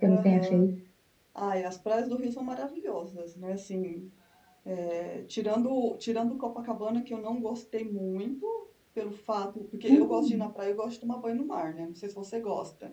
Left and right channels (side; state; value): both; identical; correlation 1.00